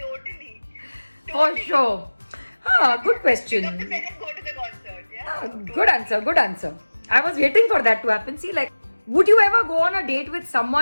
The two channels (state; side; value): inverted; both; correlation -1.00